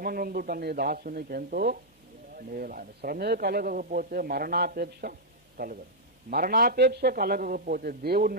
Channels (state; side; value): normal; both; correlation -0.06